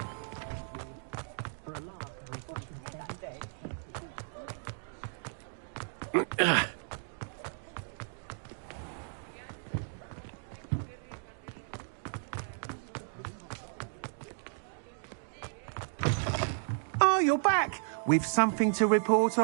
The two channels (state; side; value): silent; left; digital silence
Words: Oh, you're back! With something to report,